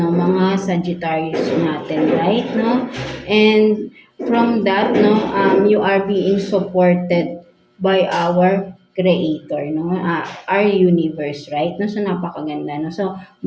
mga Sagittarius natin, right, no. And from that, no, you are being supported by our creator, no? Our universe, right? No? So, napakaganda, no? So,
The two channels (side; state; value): both; identical; correlation 1.00